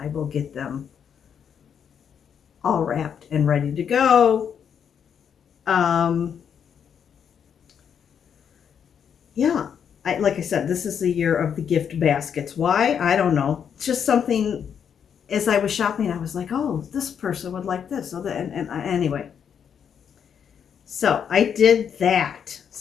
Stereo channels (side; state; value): right; quieter; 7.8 dB